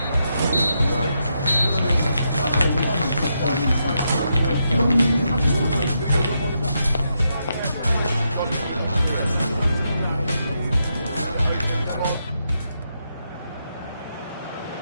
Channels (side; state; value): both; inverted; correlation -0.82